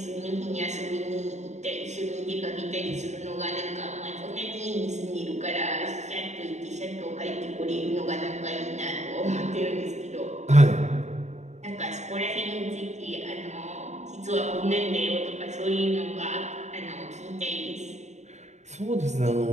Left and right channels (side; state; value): left; late; 0.33 ms